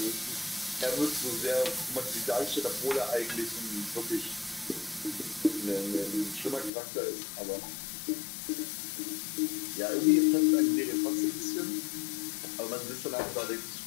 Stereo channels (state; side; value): drops out; right; at 6.7 s